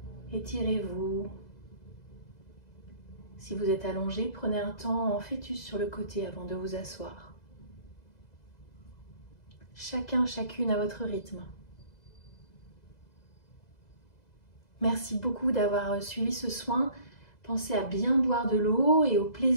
Étirez-vous. Si vous êtes allongé, prenez un temps en fœtus sur le côté avant de vous asseoir. Chacun, chacune à votre rythme. Merci beaucoup d'avoir suivi ce soin. Pensez à bien boire de l'eau et au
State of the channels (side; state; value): right; late; 2.0 ms